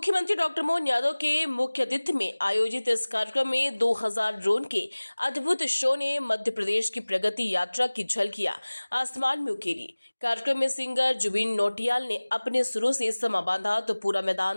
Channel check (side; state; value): both; inverted; correlation -1.00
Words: डॉक्टर मोहन यादव के मुख्य अतिथि में आयोजित इस कार्यक्रम में 2000 ड्रोन के अद्भुत शो ने मध्य प्रदेश की प्रगति यात्रा की झलकियां आसमान में उकेरी। कार्यक्रम में सिंगर जुबिन नौटियाल ने अपने सुरों से समा बांधा तो पूरा